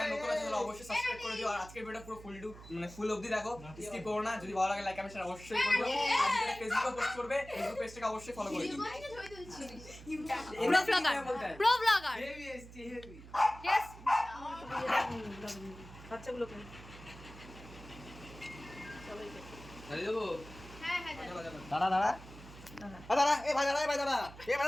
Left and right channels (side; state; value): right; noise; hum, 17 dB below the sound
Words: নতুন আছে তাহলে অবশ্যই সাবস্ক্রাইব করে দিও, আর আজকের ভিডিওটা পুরো ফুল অবধি দেখো, স্কিপ করো না। যদি ভালো লাগে লাইক কমেন্ট শেয়ার অবশ্যই করবে। আর যেটা ফেসবুকে পোস্ট করবে, ফেসবুক পেজটাকে অবশ্যই ফলো করে দিও। Pro blogger, pro blogger. Yes. বাচ্চাগুলো কই? দাঁড়িয়ে দেবো হ্যাঁ হ্যাঁ দাঁড়া দাঁড়া দাঁড়া, এ ভাই দাঁড়া, এ ভাই দাঁড়া, এ ভাই